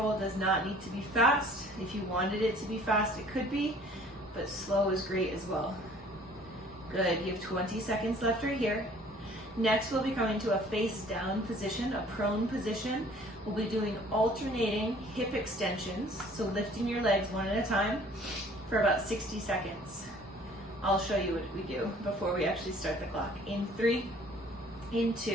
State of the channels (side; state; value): both; normal; correlation 0.54